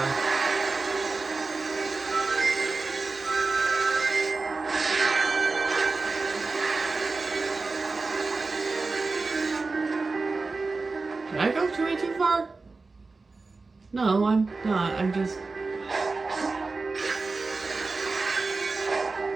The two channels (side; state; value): left; quieter; 3.9 dB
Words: Did I go way too far? No, I'm not. I'm just...